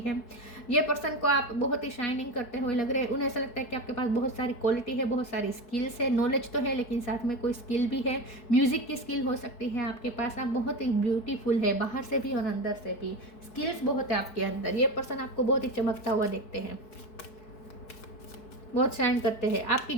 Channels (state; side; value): late; right; 4.6 ms